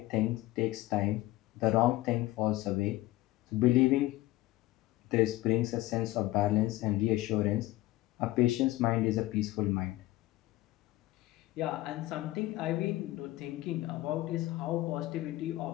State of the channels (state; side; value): quieter; right; 17.4 dB